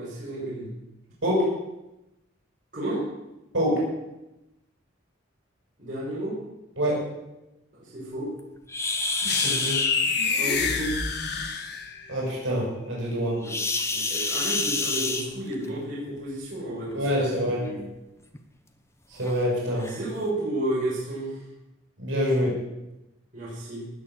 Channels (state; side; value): normal; both; correlation 0.17